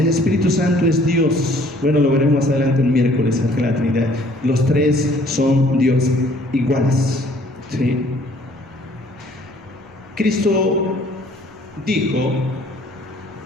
Espíritu Santo es Dios. Bueno, lo veremos más adelante el miércoles en la Trinidad. Los tres son Dios iguales, ¿sí? Cristo dijo:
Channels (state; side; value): noise; left; rumble, 30 dB below the sound